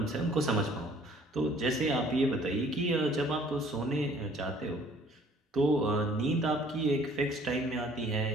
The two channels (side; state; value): both; normal; correlation 0.56